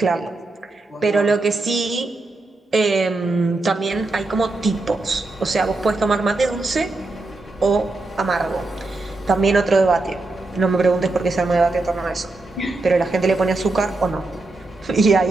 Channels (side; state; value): left; quieter; 3.1 dB